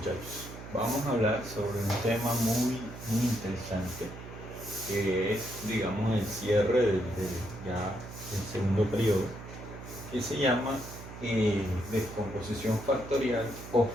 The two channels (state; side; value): noise; right; hum, 13 dB below the sound